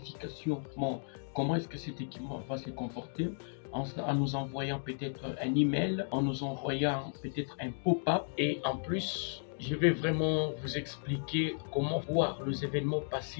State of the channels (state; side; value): silent; right; digital silence